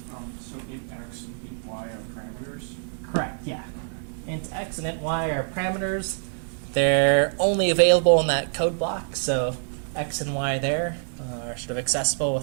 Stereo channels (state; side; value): silent; left; digital silence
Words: So int x and int y are parameters? Correct, yeah. Int x and int y are parameters. They're only available in that code block, so x and y there are sort of accessible